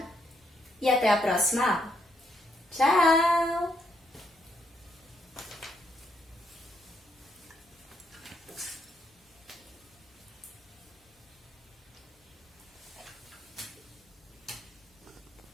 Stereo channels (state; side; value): normal; both; correlation 0.76